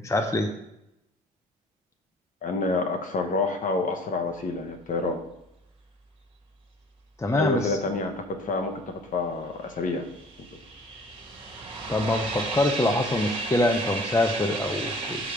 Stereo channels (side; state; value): both; normal; correlation 0.52